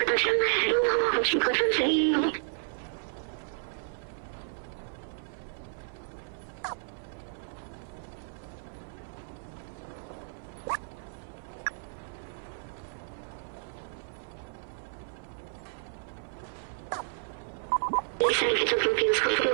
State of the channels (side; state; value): left; silent; 56 dB below the other